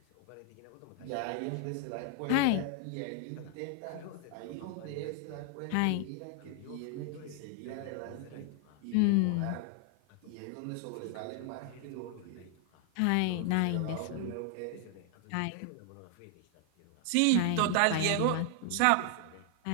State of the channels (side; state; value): both; different; correlation 0.00